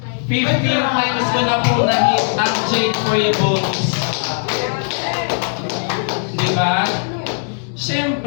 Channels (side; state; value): right; silent; digital silence